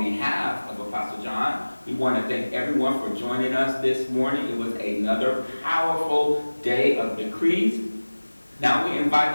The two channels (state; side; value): inverted; both; correlation -1.00